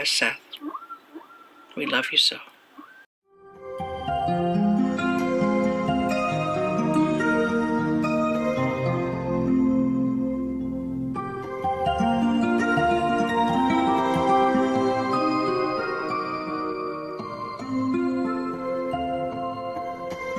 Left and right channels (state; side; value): identical; both; correlation 1.00